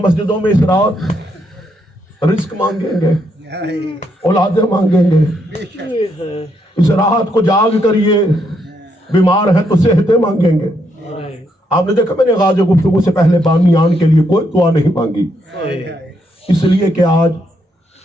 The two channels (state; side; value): normal; both; correlation 0.76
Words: مسجدوں میں اس رات رزق مانگیں گے, اولادیں مانگیں گے, اس رات کو جاگ کر یہ بیمار ہیں تو صحتیں مانگیں گے. آپ نے دیکھا میں نے غازِ گفتگو سے پہلے بامیان کے لیے کوئی دعا نہیں مانگی، اس لیے کہ آج